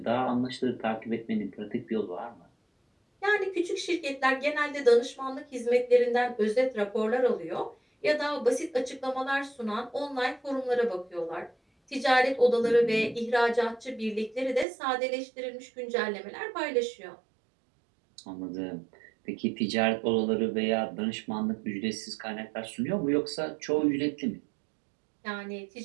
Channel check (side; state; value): left; drops out; at 14.7 s